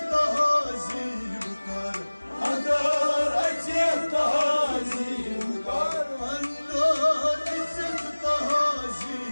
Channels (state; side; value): inverted; both; correlation -1.00